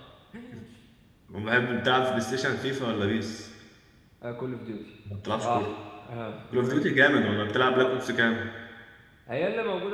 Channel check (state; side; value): identical; both; correlation 1.00